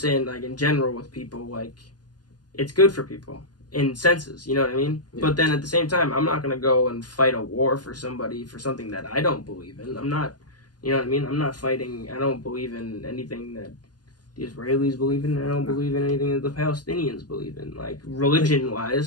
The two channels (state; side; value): late; right; 0.70 ms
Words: like, in general with people, like, it's good for people in senses, you know what I mean? Yeah. But then at the same time, I'm not going to go and fight a war for somebody for something that I don't believe in. I'm not, you know what I mean? I'm not fighting, I don't believe in anything that the Israelis believe in. I don't believe in anything that the Palestinians believe in. Like,